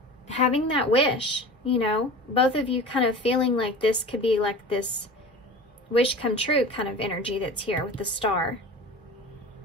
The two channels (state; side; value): normal; both; correlation 0.36